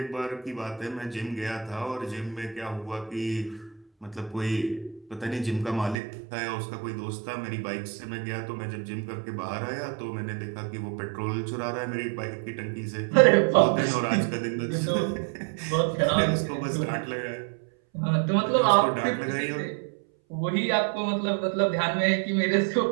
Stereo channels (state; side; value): drops out; left; at 6.0 s